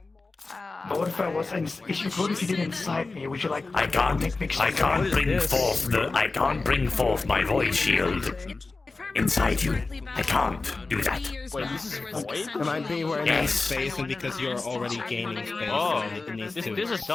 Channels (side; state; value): right; quieter; 3.7 dB